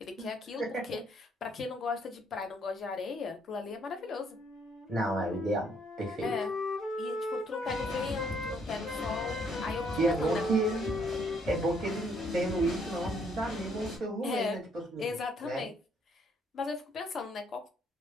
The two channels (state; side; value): normal; both; correlation 0.68